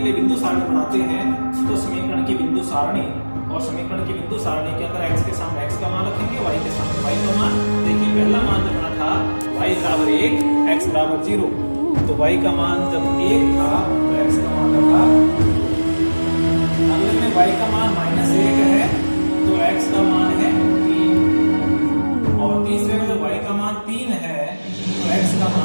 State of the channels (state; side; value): inverted; both; correlation -1.00